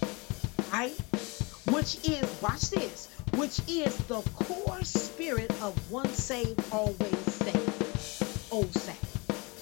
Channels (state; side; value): quieter; right; 27.8 dB